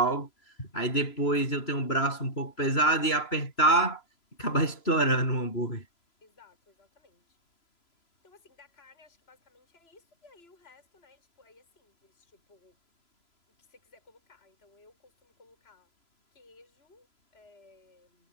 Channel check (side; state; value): right; late; 3.0 ms